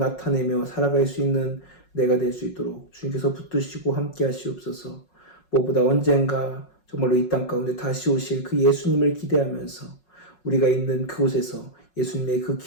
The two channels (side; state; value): right; late; 5.5 ms